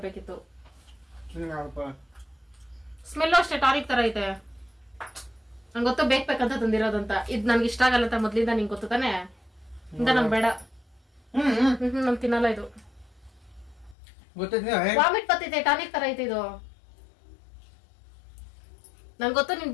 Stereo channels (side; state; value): right; drops out; at 14.0 s